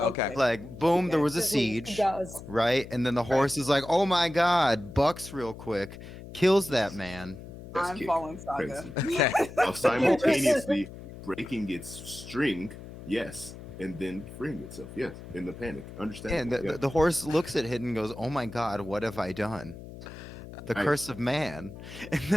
boom, there was a Just leaves. He siege, goes. right? And then the horse is like, "Oh my god," bucks real quick, kills that man. Best I'm kick. following Saga. Okay. While simultaneously breaking its string, yes, and then freeing itself, yes, in the panic. Understand? And the horse looks at Hidden and goes, "Oh my god, what have I done? The curse of man," and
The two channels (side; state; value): left; noise; hum, 14 dB below the sound